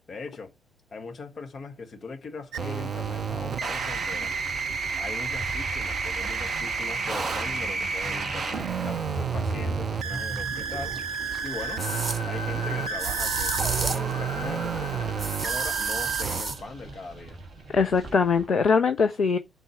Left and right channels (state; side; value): normal; both; correlation 0.65